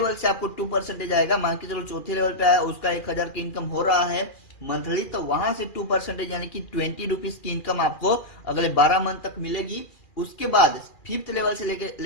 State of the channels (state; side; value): late; right; 2.4 ms